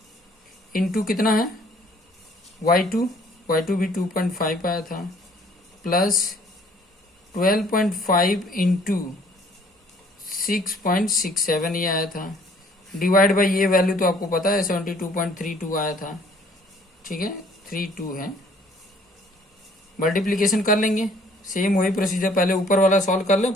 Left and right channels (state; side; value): normal; both; correlation 0.59